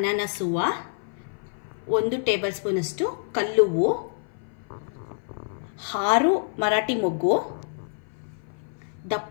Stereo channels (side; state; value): right; silent; 56 dB below the other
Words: ಹೂವು, 1 ಟೇಬಲ್ ಸ್ಪೂನಷ್ಟು ಕಲ್ಲುವ್ವು, 6 ಮರಾಠಿ ಮೊಗ್ಗು,